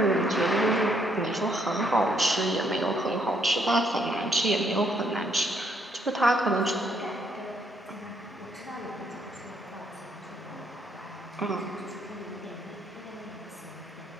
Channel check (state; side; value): normal; both; correlation 0.71